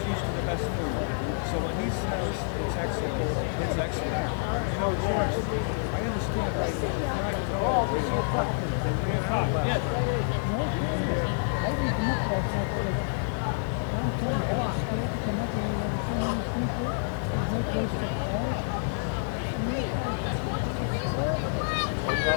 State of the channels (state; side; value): silent; right; digital silence